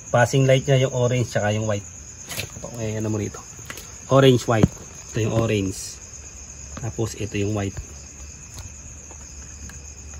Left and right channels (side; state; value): both; identical; correlation 1.00